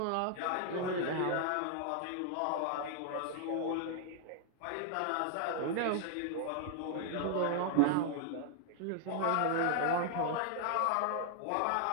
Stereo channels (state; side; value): different; both; correlation 0.00